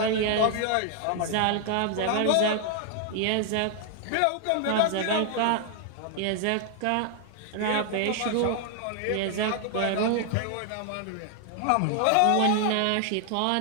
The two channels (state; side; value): different; both; correlation 0.00